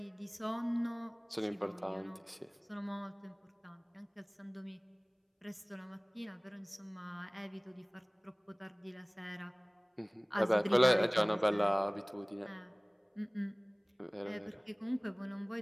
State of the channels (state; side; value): identical; both; correlation 1.00